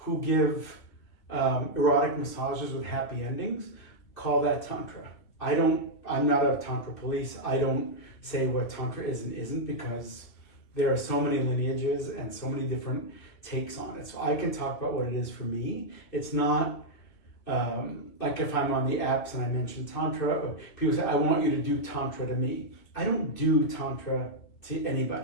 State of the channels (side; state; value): right; late; 2.8 ms